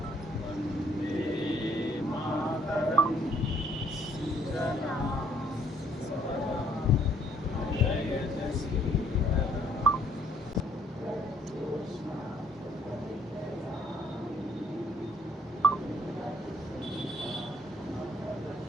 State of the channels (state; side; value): normal; both; correlation 0.63